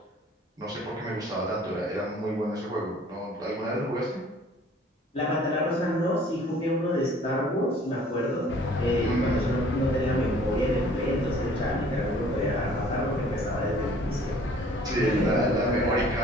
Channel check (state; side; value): normal; both; correlation 0.53